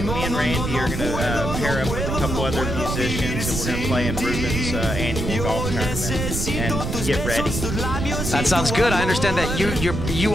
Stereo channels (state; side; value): noise; right; rumble, 3 dB below the sound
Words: me and Randy are going to pair up with a couple other musicians, and we're going to play in Ruben's annual golf tournament and get ready. That sounds good. I understand that you